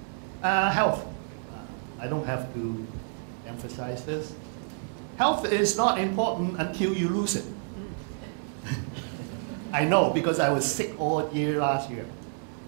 Health. I don't have to emphasize this. Health is not important until you lose it. I know, because I was sick all year last year.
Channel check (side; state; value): left; silent; 59 dB below the other